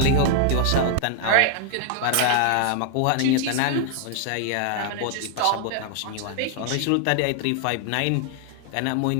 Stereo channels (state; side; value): different; both; correlation 0.00